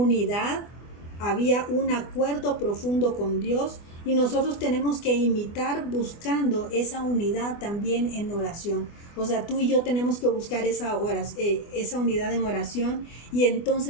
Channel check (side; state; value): right; late; 24 ms